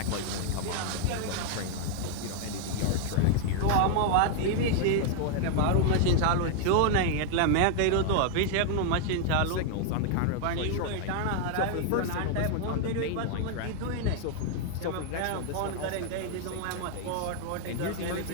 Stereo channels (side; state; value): both; different; correlation 0.00